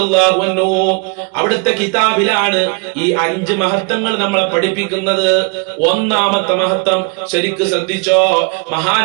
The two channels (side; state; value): left; quieter; 32.8 dB